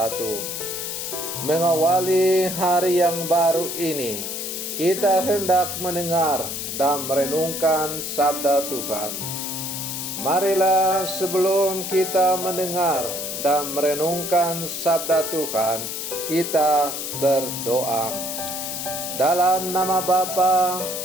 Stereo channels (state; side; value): noise; left; hiss, 5 dB below the sound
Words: Mengawali hari yang baru ini, kita hendak mendengar dan merenungkan sabda Tuhan. Marilah sebelum kita mendengar dan merenungkan sabda Tuhan, kita berdoa. Dalam nama Bapa